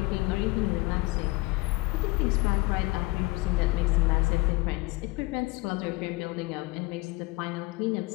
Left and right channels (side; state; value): right; quieter; 22.8 dB